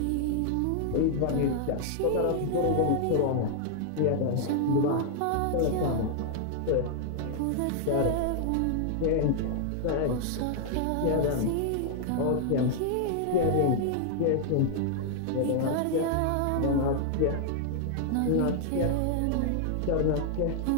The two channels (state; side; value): different; both; correlation 0.00